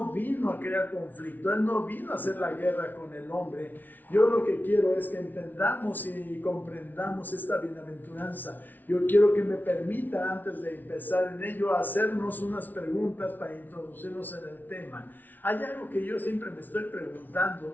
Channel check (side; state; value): right; late; 0.084 ms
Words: vino a crear conflicto, Él no vino a hacer la guerra con el hombre. Yo lo que quiero es que entendamos y comprendamos esta bienaventuranza. Yo quiero que me permita, antes de empezar en ello, hacernos unas preguntas para introducirnos en el tema. Hay algo que yo siempre me estoy